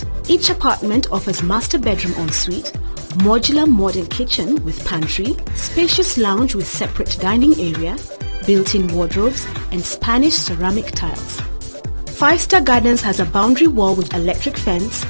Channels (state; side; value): inverted; both; correlation -1.00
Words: Each apartment offers master bedroom ensuite, modular modern kitchen with pantry, spacious lounge with separate dining area, built-in wardrobes, and Spanish ceramic tiles. 5-Star Gardens has a boundary wall with electric fence,